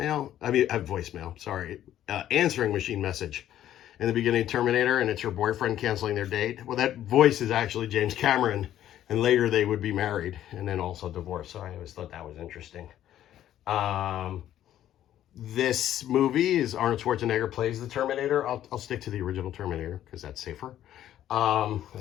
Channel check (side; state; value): right; quieter; 11.9 dB